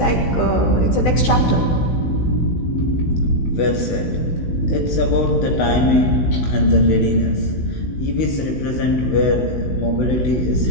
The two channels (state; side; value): late; right; 16 ms